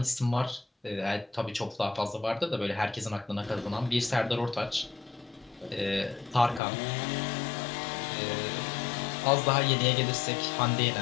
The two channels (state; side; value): drops out; right; at 6.6 s